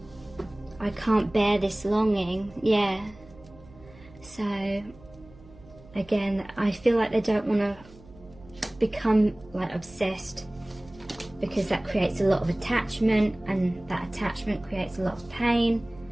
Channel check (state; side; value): noise; right; hum, 22 dB below the sound